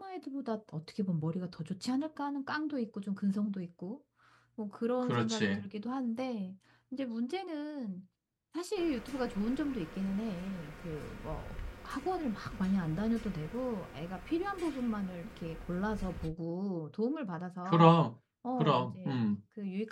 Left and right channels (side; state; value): both; identical; correlation 1.00